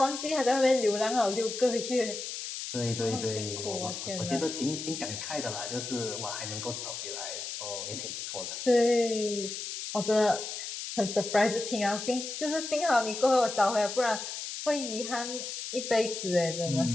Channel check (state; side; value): noise; left; hiss, 6 dB below the sound